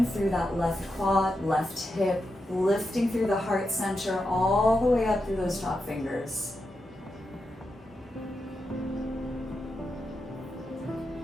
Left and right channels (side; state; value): both; normal; correlation 0.87